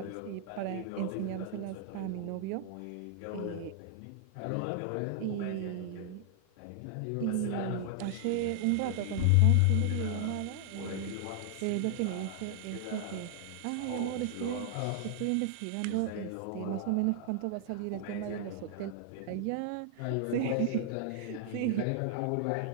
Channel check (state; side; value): different; both; correlation 0.00